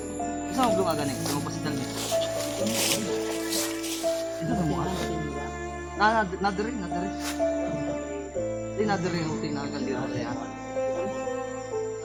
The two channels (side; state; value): both; identical; correlation 1.00